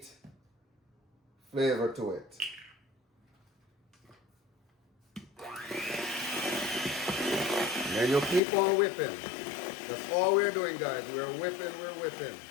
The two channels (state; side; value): drops out; right; at 8.4 s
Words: flavor to it. And then you keep on whipping. That's all we're doing, guys. We're whipping, we're whipping.